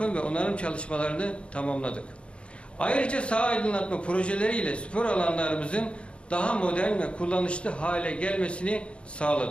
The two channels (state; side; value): late; right; 0.058 ms